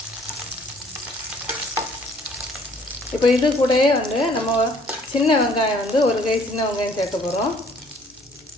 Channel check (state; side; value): normal; both; correlation 0.59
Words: இப்போ இது கூடயே நம்ம சின்ன வெங்காயம் ஒரு கை சின்ன வெங்காயம் சேர்க்க போகிறோம்.